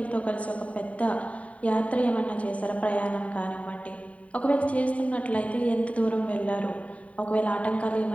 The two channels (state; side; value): late; right; 0.067 ms